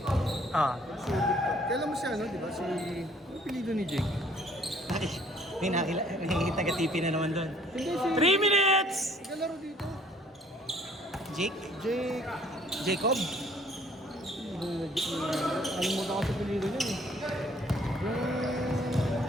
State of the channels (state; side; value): normal; both; correlation 0.59